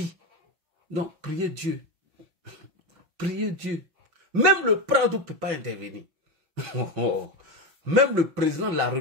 Donc, priez Dieu. Priez Dieu. Même le Prado ne peut pas intervenir. Même le président de la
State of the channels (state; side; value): late; left; 6.0 ms